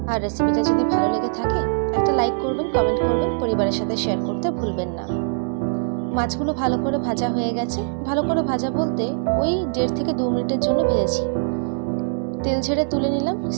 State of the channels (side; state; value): left; silent; digital silence